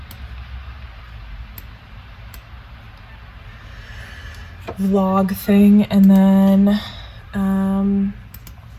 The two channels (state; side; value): identical; both; correlation 1.00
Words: vlog thing, and then